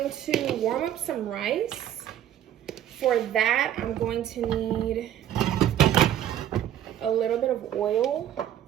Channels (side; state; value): left; quieter; 11.1 dB